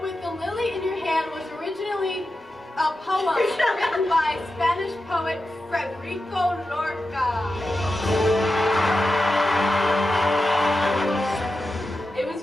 With the Lily in Your Hand was originally a poem written by Spanish poet Federico Lorca. It was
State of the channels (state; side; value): normal; both; correlation 0.91